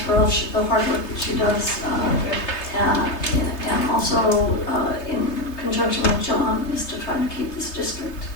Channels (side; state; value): right; late; 3.3 ms